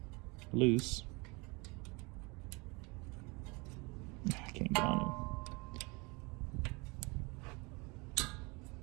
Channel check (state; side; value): quieter; left; 27.3 dB